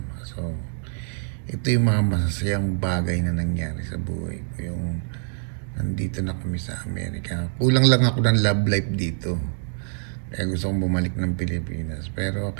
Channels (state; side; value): silent; left; digital silence